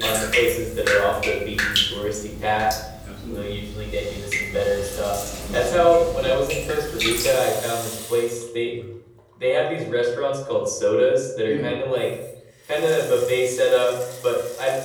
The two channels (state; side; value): identical; both; correlation 1.00